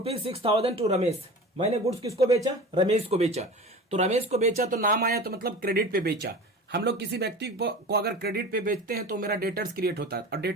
to Ramesh. मैंने गुड्स किसको बेचा? रमेश को बेचा। तो रमेश को बेचा तो नाम आया, तो मतलब क्रेडिट पे बेचा। हम लोग किसी व्यक्ति को अगर क्रेडिट पे बेचते हैं तो मेरा डेटर्स क्रिएट होता है, और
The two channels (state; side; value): normal; both; correlation 0.35